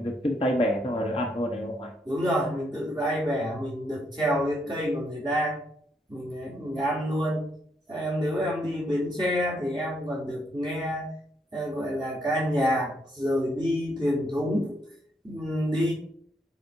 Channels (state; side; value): normal; both; correlation 0.75